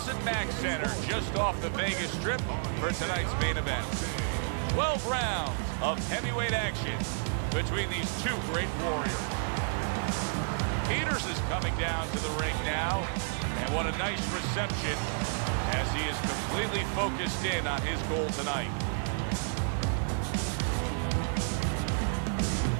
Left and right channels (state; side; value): silent; left; digital silence